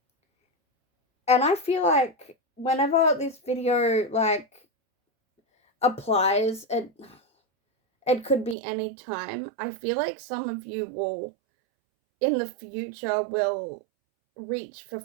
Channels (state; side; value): drops out; left; at 8.6 s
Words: And I feel like whenever this video like applies, it could be any time. I feel like some of you will in the future will reach for